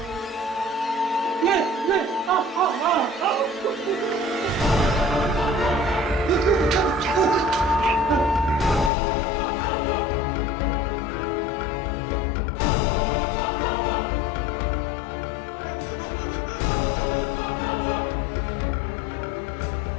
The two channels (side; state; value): right; drops out; at 8.9 s